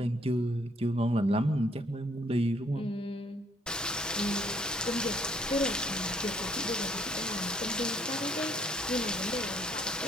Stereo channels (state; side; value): normal; both; correlation 0.65